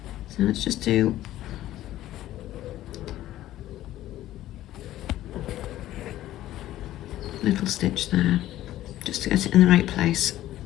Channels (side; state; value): right; quieter; 14.1 dB